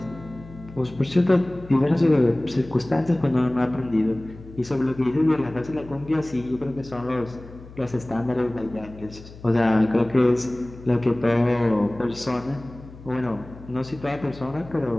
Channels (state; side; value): noise; left; hum, 18 dB below the sound